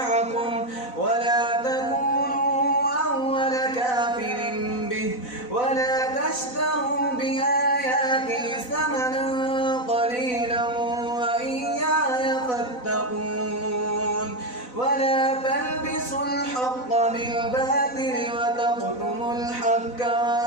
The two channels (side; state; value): right; late; 4.0 ms